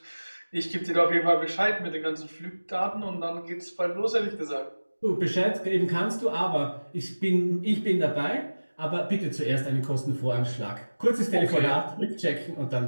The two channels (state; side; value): inverted; both; correlation -1.00